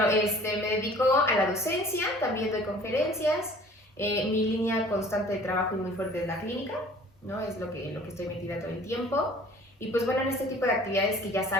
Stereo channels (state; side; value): normal; both; correlation 0.50